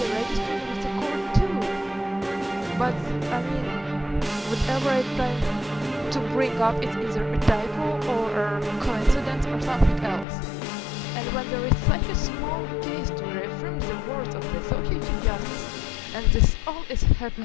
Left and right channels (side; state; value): right; drops out; at 10.2 s